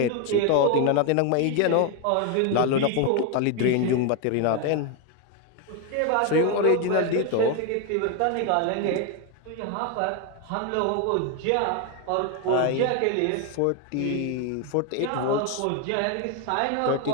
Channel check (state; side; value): different; both; correlation 0.01